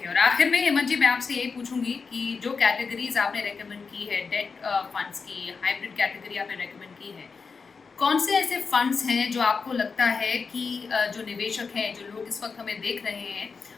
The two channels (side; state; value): right; quieter; 5.0 dB